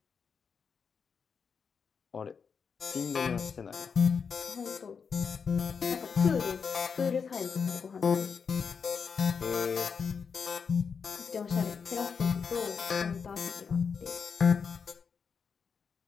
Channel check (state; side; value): quieter; right; 6.0 dB